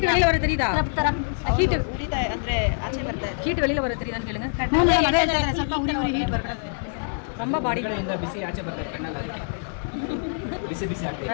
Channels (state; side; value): silent; right; 62 dB below the other